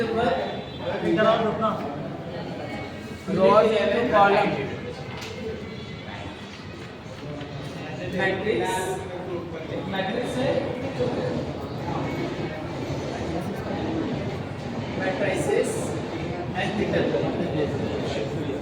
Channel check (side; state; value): both; identical; correlation 1.00